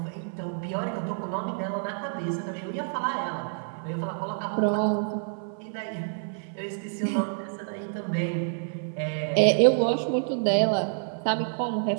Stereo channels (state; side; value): silent; left; 58 dB below the other